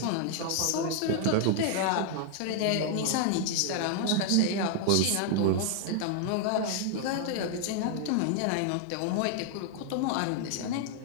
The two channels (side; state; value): both; different; correlation 0.00